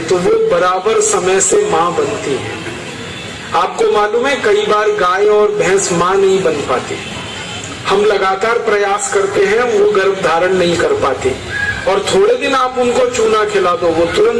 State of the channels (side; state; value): both; identical; correlation 1.00